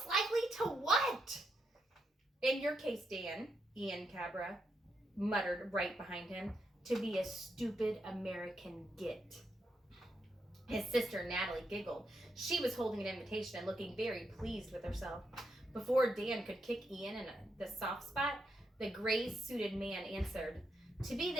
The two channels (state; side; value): normal; both; correlation 0.81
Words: likely to what?" "In your case, Dan," Ian Cabra muttered right behind him, "to be a stupid American git." His sister Natalie giggled. She was holding an invitation and looking very pleased with herself. Before Dan could kick Ian in the soft spot, the gray-suited man answered, "To be